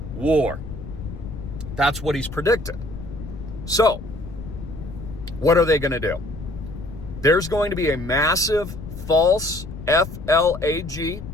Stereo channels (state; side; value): noise; left; rumble, 11 dB below the sound